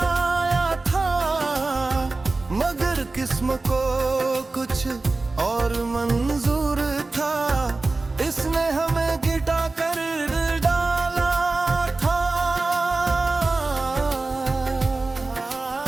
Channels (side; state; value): left; quieter; 3.4 dB